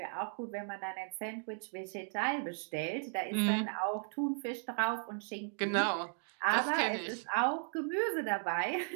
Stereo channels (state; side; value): silent; left; 54 dB below the other